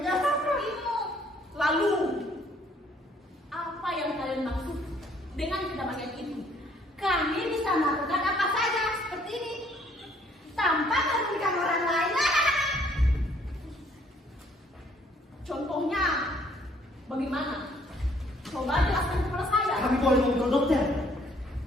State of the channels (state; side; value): normal; both; correlation 0.63